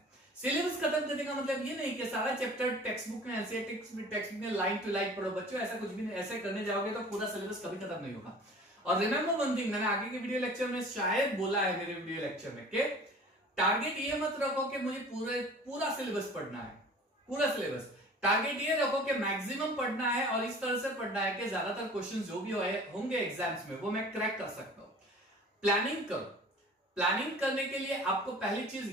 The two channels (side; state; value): both; normal; correlation 0.45